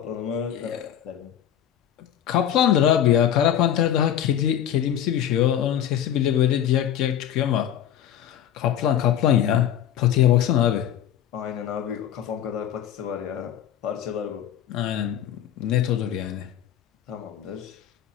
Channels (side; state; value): right; quieter; 10.3 dB